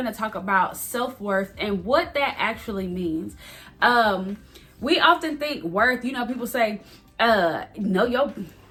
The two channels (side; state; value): both; identical; correlation 1.00